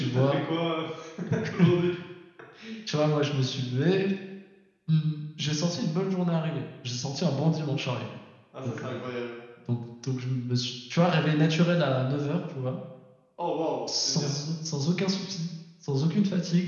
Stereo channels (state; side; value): identical; both; correlation 1.00